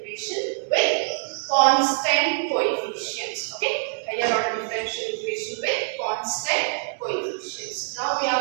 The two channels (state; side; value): silent; left; digital silence